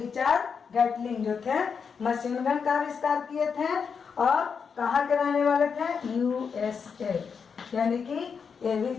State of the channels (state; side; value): quieter; right; 6.1 dB